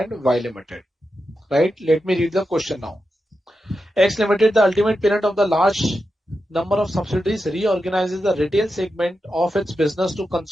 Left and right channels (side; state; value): both; normal; correlation 0.89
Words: Y Limited. Right? Let me read the question now. X Limited, the ultimate parent of the large number of subsidiaries, reorganizes the retail segment of its business to